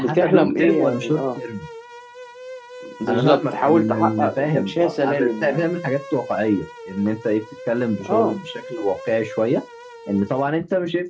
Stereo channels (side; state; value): both; identical; correlation 1.00